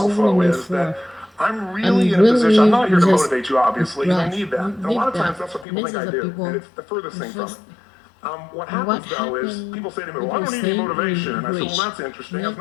is that I'm really in a position. I'm not here to motivate you, obviously. You don't need that. And a lot of times that's what people think I do, and it's the furthest thing from it. What happens, though, is people say to me, well, I don't need any motivation. And I say, well, that's interesting. That's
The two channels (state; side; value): drops out; right; at 5.7 s